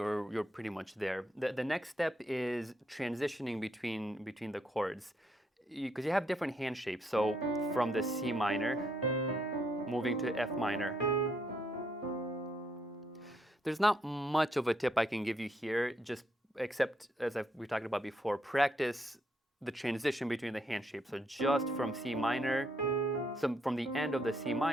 pretty much there. The next step is transitioning between the chords, because you have different hand shapes. So from the C minor, moving to F minor. There's not much of a tip I can give you here, just except, as we talked about before, practice the transition between the hand shapes. So just from C minor, so from the end of the C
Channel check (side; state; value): both; normal; correlation 0.75